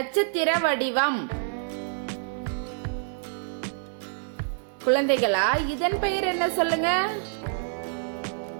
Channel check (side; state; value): left; silent; digital silence